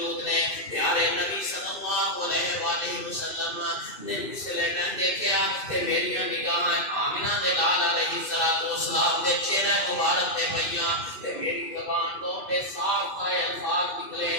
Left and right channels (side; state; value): right; late; 2.5 ms